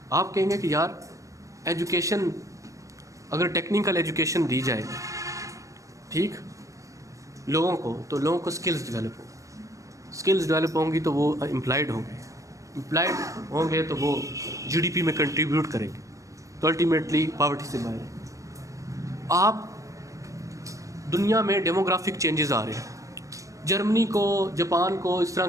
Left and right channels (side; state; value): left; late; 0.16 ms